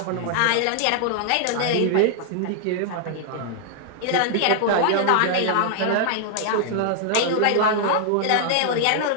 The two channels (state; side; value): different; both; correlation -0.01